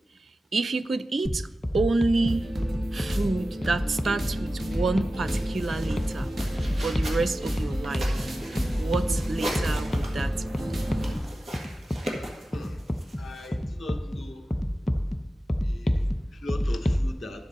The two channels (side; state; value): both; normal; correlation 0.94